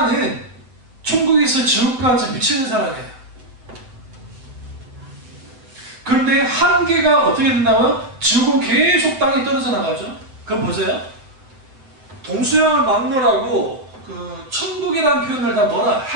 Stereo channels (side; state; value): left; late; 7.8 ms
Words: 천국에서 지옥까지 미치는 사랑이에요. 그런데 한계가 어떻게 된다고요? 지옥은 계속 땅에 떨어져 나가죠. 그럼 보세요. 동서양을 막론하고 그 천국이라는 표현을 다 뭐라?